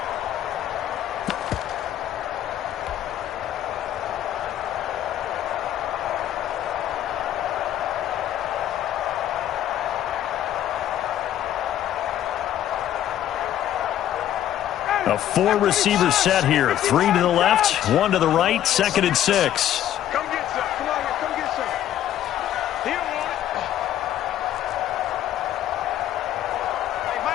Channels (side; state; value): right; quieter; 11.8 dB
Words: A 4-receiver set here. 3 to the left, 1 to the right, 2nd and 6. Come get some. Come on here. Come get some. He don't want it. Hey,